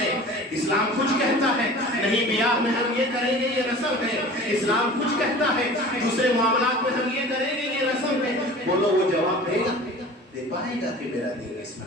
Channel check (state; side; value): normal; both; correlation 0.41